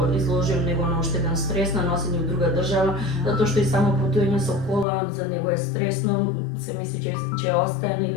изложим него на уште еден стрес на носење во друга држава, затоа што и само патување со кола за него е стресно, се мисли че остане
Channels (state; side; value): drops out; right; at 4.9 s